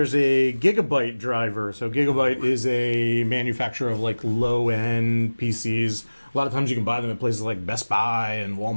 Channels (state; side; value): inverted; both; correlation -1.00